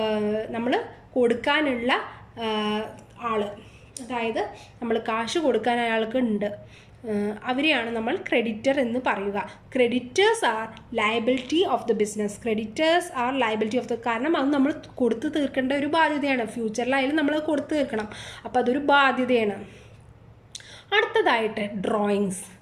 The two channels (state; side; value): identical; both; correlation 1.00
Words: നമ്മൾ കൊടുക്കാനുള്ള ആൾ, അതായത് നമ്മൾ കാശ് കൊടുക്കാൻ അയാൾക്ക് ഉണ്ട്, അവരെയാണ് നമ്മൾ ക്രെഡിറ്റർ എന്ന് പറയുക. Creditors R liability of the business. കാരണം അത് നമ്മൾ കൊടുത്തു തീർക്കേണ്ട ഒരു ബാധ്യതയാണ്. ഫ്യൂച്ചറിലായാലും നമ്മൾ കൊടുത്തു തീർക്കണം, അപ്പോൾ അതൊരു ബാധ്യതയാണ്. അടുത്തതായിട്ട് drawings.